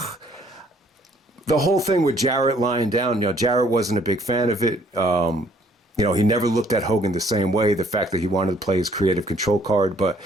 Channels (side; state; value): both; normal; correlation 0.62